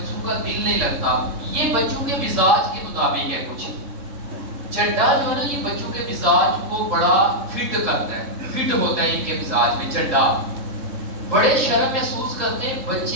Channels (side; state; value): left; late; 3.6 ms